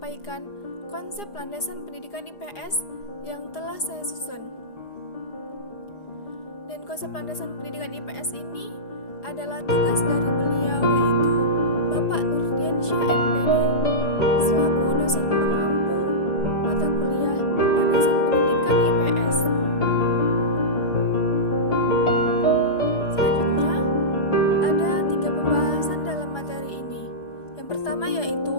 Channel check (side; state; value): right; late; 4.9 ms